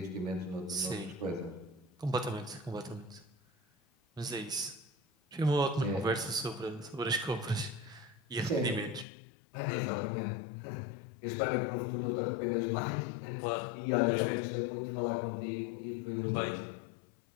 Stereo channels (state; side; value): drops out; right; at 9.1 s